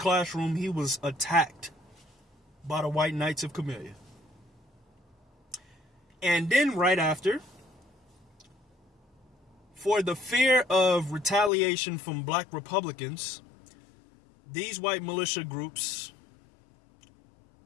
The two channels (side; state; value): right; drops out; at 11.5 s